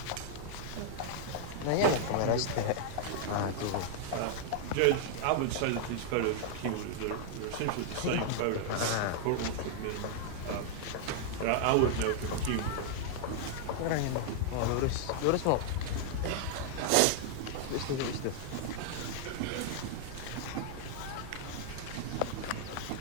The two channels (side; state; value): both; different; correlation -0.01